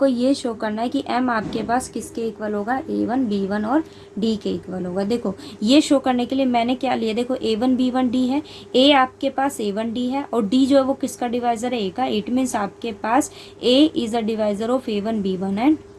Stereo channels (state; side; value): identical; both; correlation 1.00